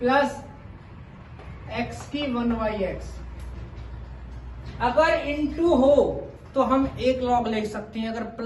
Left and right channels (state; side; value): identical; both; correlation 1.00